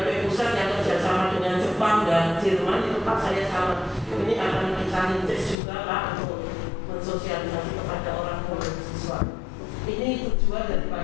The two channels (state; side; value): drops out; right; at 5.6 s